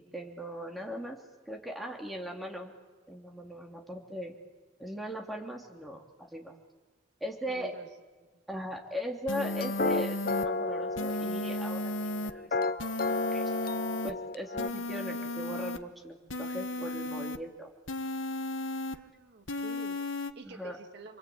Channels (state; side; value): normal; both; correlation 0.20